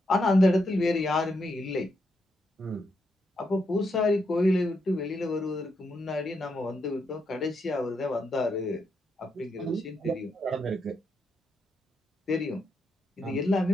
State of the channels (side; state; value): both; normal; correlation 0.81